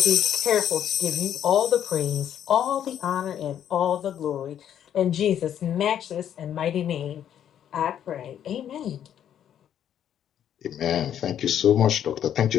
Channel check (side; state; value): right; quieter; 9.9 dB